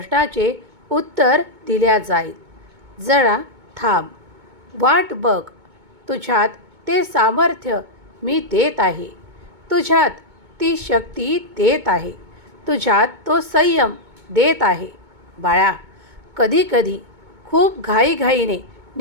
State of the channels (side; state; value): left; late; 2.2 ms